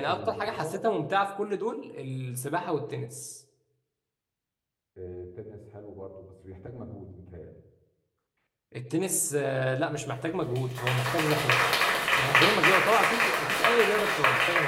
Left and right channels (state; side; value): identical; both; correlation 1.00